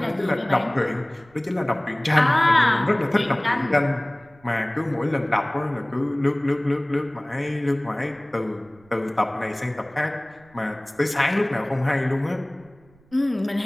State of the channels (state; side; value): noise; right; rumble, 29 dB below the sound